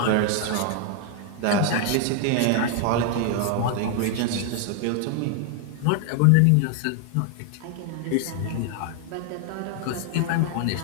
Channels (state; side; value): different; both; correlation 0.00